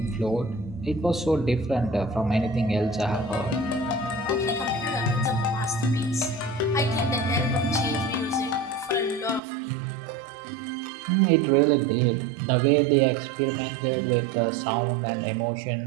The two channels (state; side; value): drops out; left; at 9.4 s